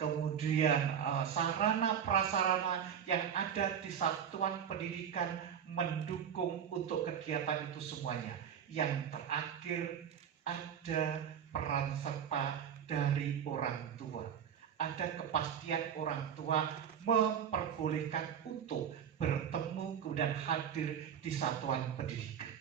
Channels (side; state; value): left; quieter; 8.3 dB